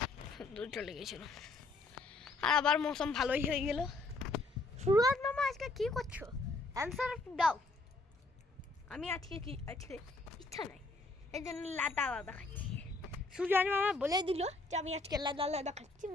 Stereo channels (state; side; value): quieter; right; 3.2 dB